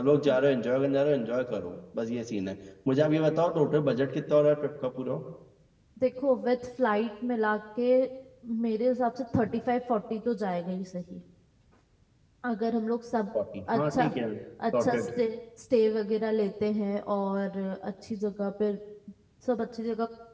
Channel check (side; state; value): both; identical; correlation 1.00